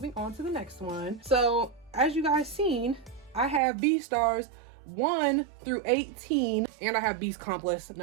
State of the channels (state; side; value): drops out; left; at 3.6 s